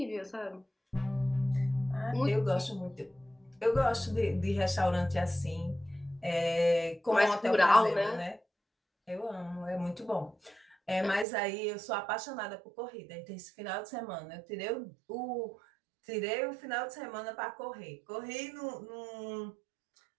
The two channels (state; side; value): drops out; left; at 11.2 s